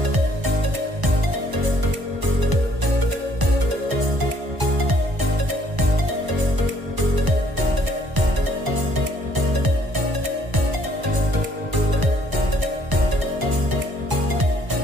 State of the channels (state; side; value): late; left; 1.1 ms